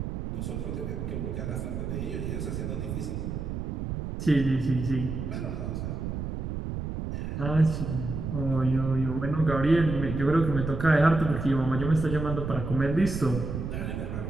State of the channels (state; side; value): noise; right; rumble, 4 dB below the sound